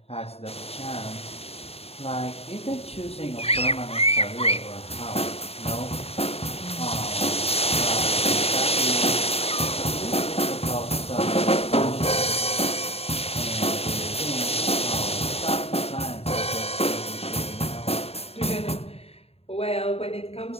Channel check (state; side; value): late; right; 0.29 ms